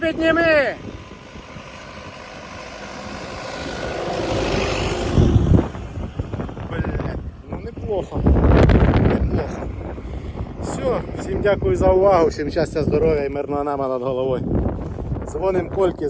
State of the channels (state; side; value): identical; both; correlation 1.00